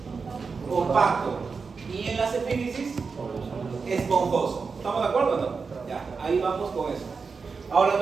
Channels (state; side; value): quieter; left; 5.0 dB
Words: Compacto. Y en las epífisis, esponjoso. ¿Estamos de acuerdo o no? Ya, ahí vamos con eso. Ahora